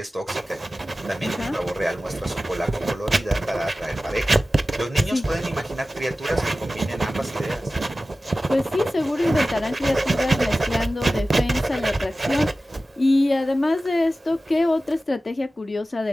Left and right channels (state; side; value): normal; both; correlation 0.95